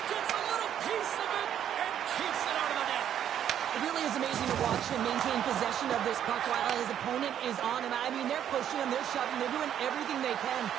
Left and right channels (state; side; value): quieter; left; 9.9 dB